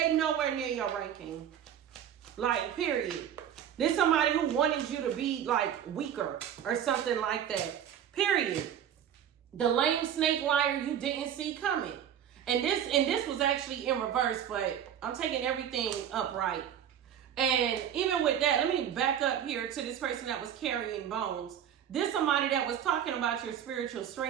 nowhere near your ranking. Like, period. This somebody who wanted you to be like weaker or something like that. Period. The lame snake liar you didn't see coming. And this was actually in reverse, but I'm taking everything upright. And even with that, let me back up here to this person that was carrying bones. This somebody that was talking about your spiritual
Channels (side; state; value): left; quieter; 9.5 dB